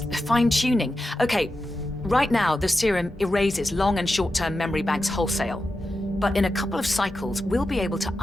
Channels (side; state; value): both; normal; correlation 0.90